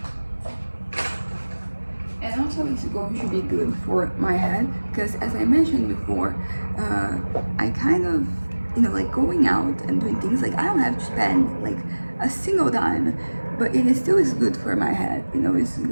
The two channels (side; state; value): both; inverted; correlation -1.00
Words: also it's going to be good for my head because, as I mentioned before, I kind of, you know, like going out and doing things, like I don't have to spend like a single dime, but it is still is good for my head, you know. It's